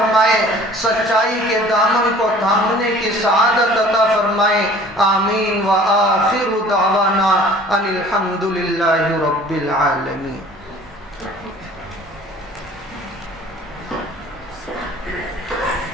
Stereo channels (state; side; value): normal; both; correlation 0.49